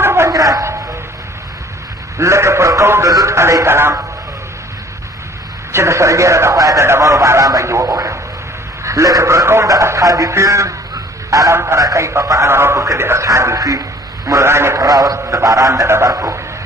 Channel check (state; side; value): normal; both; correlation 0.54